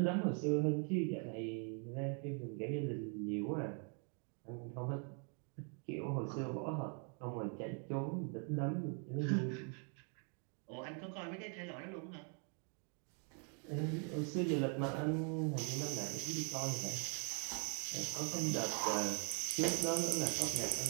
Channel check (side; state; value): left; quieter; 39.8 dB